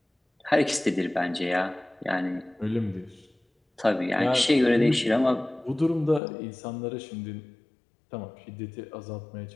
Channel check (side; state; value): right; drops out; at 6.2 s